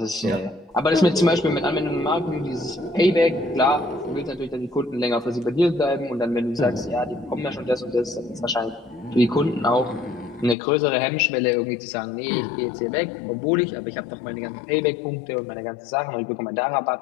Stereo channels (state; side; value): drops out; right; at 10.6 s